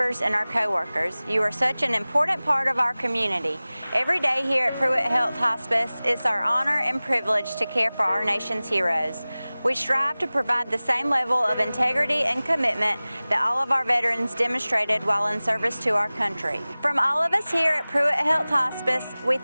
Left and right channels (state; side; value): inverted; both; correlation -0.99